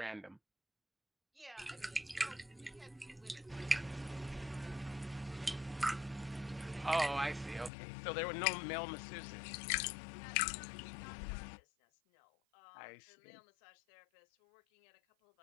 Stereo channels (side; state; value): right; drops out; at 7.7 s